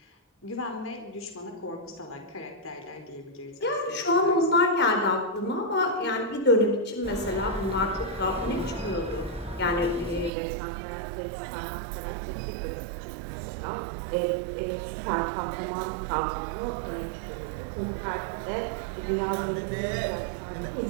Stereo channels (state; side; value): drops out; left; at 10.3 s